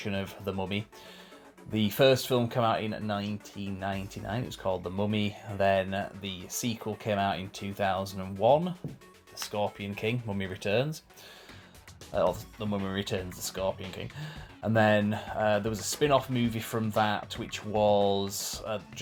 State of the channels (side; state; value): both; identical; correlation 1.00